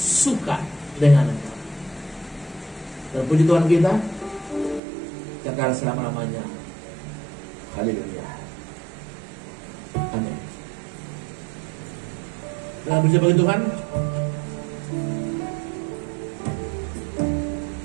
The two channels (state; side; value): drops out; left; at 4.8 s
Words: dengan engkau. Dan puji Tuhan kita kekal selama-lamanya. Haleluya. Amin. Dalam berjumpa bagi Tuhan,